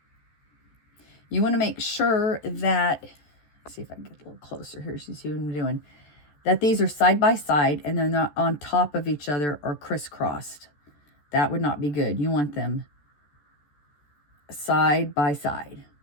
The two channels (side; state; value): right; late; 14 ms